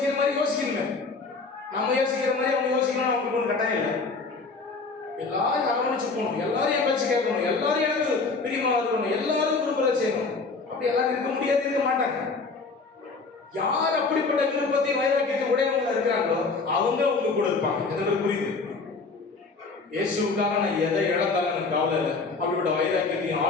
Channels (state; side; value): quieter; right; 4.1 dB